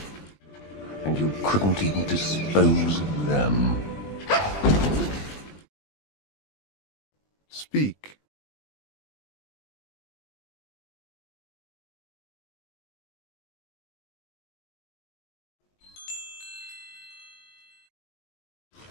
And you couldn't even dispose of them. Speak.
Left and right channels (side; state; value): right; late; 20 ms